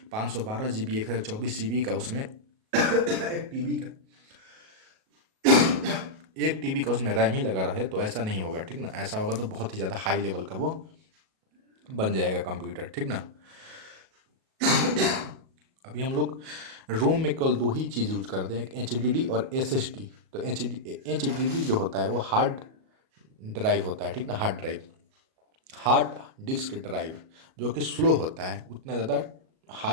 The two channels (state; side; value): late; left; 37 ms